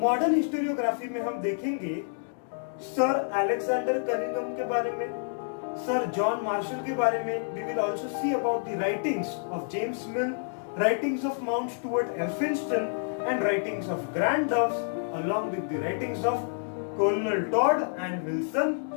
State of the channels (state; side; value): silent; right; digital silence